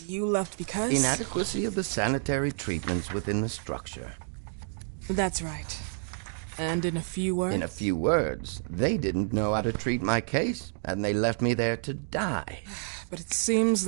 you left because? Inadequacy of the sanitary treatments within the structure. That's right. And in a few words? In a few words, they didn't know how to treat my case, and they left me there to die. But it seems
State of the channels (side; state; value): left; silent; digital silence